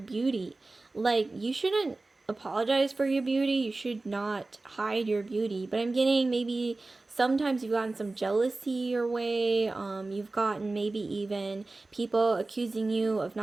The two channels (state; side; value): quieter; left; 3.3 dB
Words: Like, you shouldn't apologize for your beauty. You should not hide your beauty. But I'm getting maybe sometimes you've gotten some jealousy your way. You've gotten maybe even people accusing you of